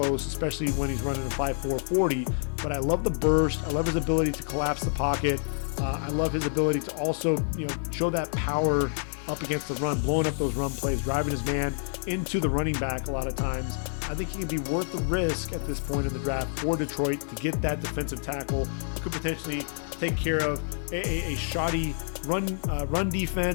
especially when he's running a 5.4 40. But I love the burst. I love his ability to collapse the pocket. I love his ability to also, show that power up against the run, blowing up those run plays, driving his man into the running back a lot of times. I think he could be worth the risk at this point in the draft for Detroit to get that defensive tackle who could potentially take care of a shoddy run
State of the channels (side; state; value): right; silent; digital silence